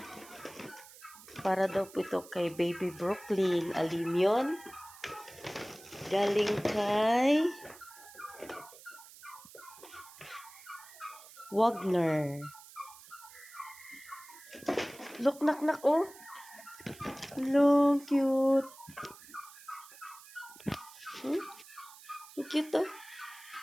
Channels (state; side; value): noise; right; hiss, 19 dB below the sound